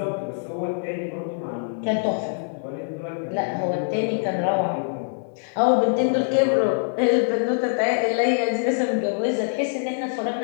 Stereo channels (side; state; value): right; silent; digital silence